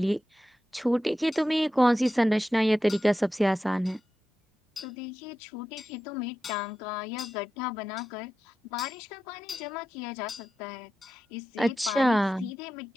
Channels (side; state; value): both; normal; correlation 0.91